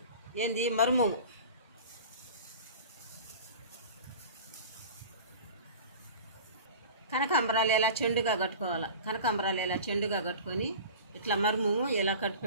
ఏంది మర్మము. కనకాంబరాలు ఎలా చెండుగా కట్టుకోవాలి. కనకాంబరాలు ఎలా చెండుగా కట్టుకొని ఇట్లా మర్మము ఎలా కట్టు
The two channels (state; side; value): inverted; both; correlation -0.37